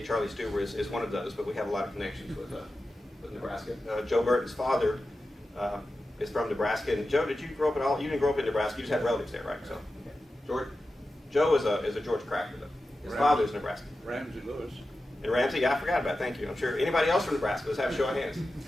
Charlie Stuber is one of those, but we have a lot of connections with Nebraska. Joe Burton's father is from Nebraska. And Joe, did you grow up at all? You didn't grow up in Nebraska. You just had relatives there, right? So, George, Joe is a George Cracker, though. His father is Nebraska. Ramsey Lewis. And Ramsey, yeah, I forgot about. Thank you. I'm sure anybody else from Nebraska. Let's have a show of hands.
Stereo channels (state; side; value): normal; both; correlation 0.92